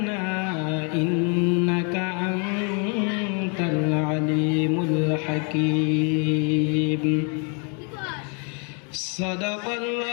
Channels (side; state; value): right; quieter; 37.8 dB